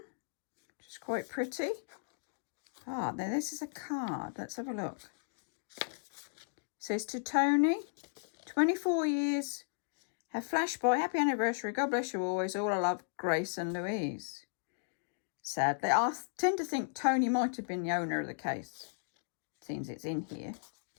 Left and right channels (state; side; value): silent; right; digital silence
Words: which is quite pretty. Ah, now this is a card. Let's have a look. It says, "To Tony, 24 years, have flashed by. Happy anniversary. God bless you always. All I love, Grace and Louise." Sadly, I tend to think Tony might have been the owner of the case. Seems it's in here,